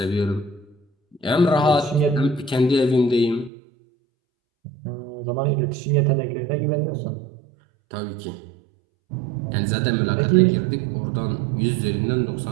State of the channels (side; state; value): left; drops out; at 3.5 s